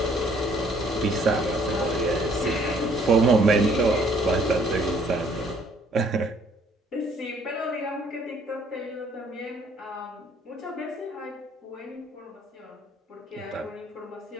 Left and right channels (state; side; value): normal; both; correlation 0.62